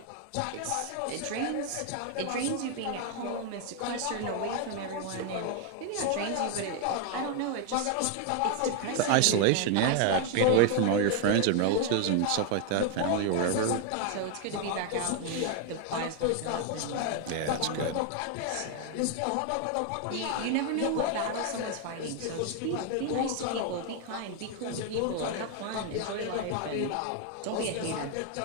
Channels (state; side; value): different; both; correlation 0.01